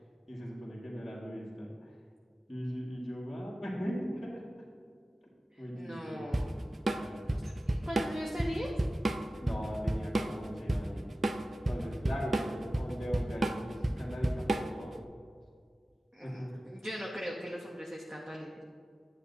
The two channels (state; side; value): normal; both; correlation 0.96